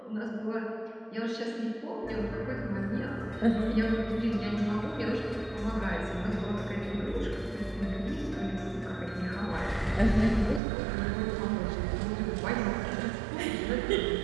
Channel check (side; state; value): left; drops out; at 10.6 s